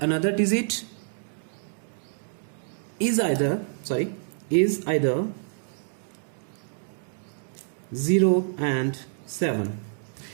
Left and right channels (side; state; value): left; silent; digital silence